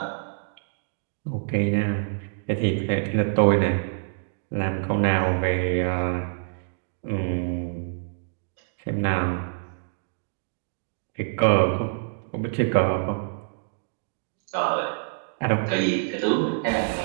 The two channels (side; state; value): left; silent; digital silence